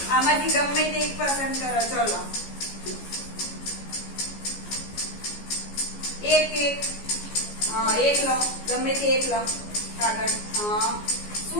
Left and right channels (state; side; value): late; right; 14 ms